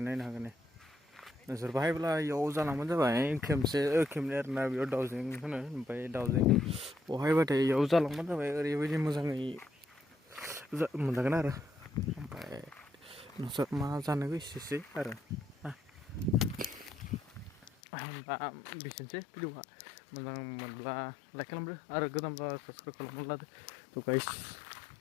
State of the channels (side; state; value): right; drops out; at 17.7 s